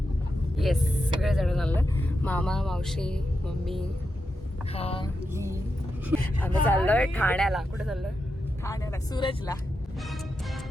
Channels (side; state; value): both; normal; correlation 0.87